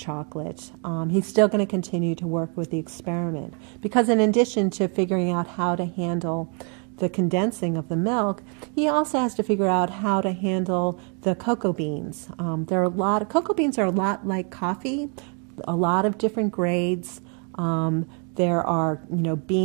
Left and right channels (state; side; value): quieter; left; 38.6 dB